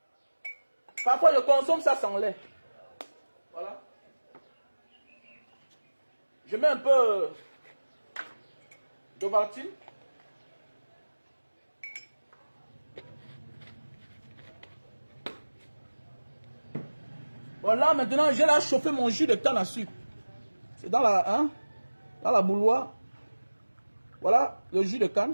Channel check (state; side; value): inverted; both; correlation -1.00